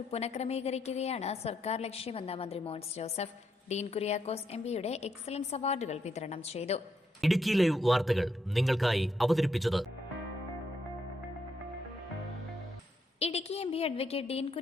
പുനഃക്രമീകരിക്കുകയാണ് സർക്കാർ ലക്ഷ്യമെന്ന് മന്ത്രി മോൻസ് ജോസഫ്. ഡീൻ കുര്യാക്കോസ് എംപിയുടെ എക്സലൻസ് അവാർഡുകൾ വിതരണം ചെയ്തു. ഇടുക്കി ലൈവ് വാർത്തകൾ നിങ്ങൾക്കായി അവതരിപ്പിച്ചത് ഇടുക്കി എംപി അഡ്വക്കേറ്റ് ഡീൻ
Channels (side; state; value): both; normal; correlation 0.77